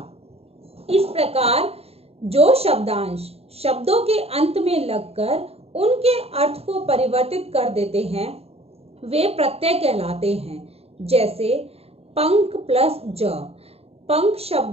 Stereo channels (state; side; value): late; left; 0.29 ms